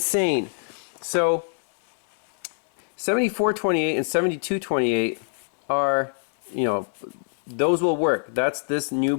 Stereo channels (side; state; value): right; silent; digital silence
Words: So 7428 and 7228 are, you know, those will work. That's this new